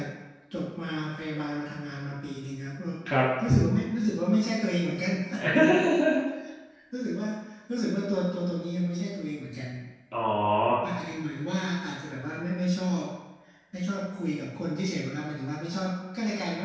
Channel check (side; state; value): both; identical; correlation 1.00